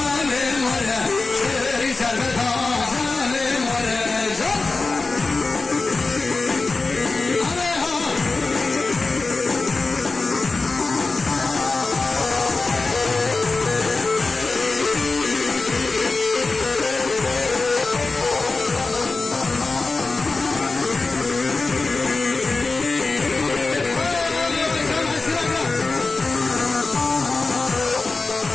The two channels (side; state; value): right; quieter; 3.7 dB